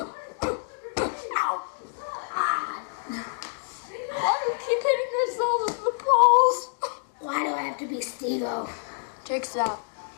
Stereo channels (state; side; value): silent; right; digital silence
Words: Why do you keep hitting yourself in the balls? Why do I have to be Steve-O? Jake, stop.